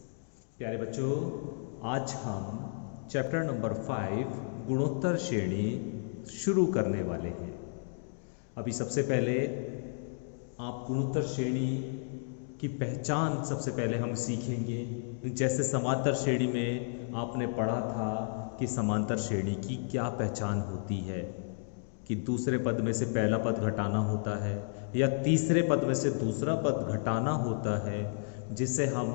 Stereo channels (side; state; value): right; silent; digital silence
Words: प्यारे बच्चों। आज हम चैप्टर नंबर 5 गुणोत्तर श्रेणी शुरू करने वाले हैं। अभी सबसे पहले आप गुणोत्तर श्रेणी की पहचान सबसे पहले हम सीखेंगे। जैसे समांतर श्रेणी में आपने पढ़ा था कि समांतर श्रेणी की क्या पहचान होती है, कि दूसरे पद में से पहला पद घटाना होता है या तीसरे पद में से दूसरा पद घटाना होता है, जिसे हम